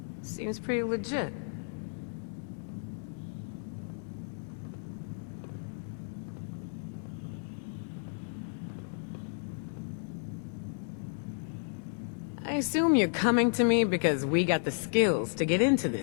Seems pretty legit. I assume you're coming to me because we got the skills to get into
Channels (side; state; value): right; silent; digital silence